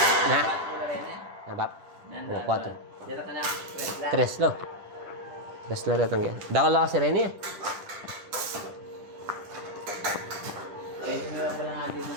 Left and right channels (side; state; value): left; late; 10 ms